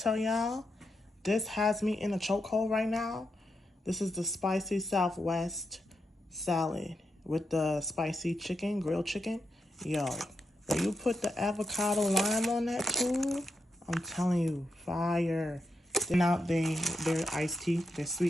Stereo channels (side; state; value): both; normal; correlation 0.84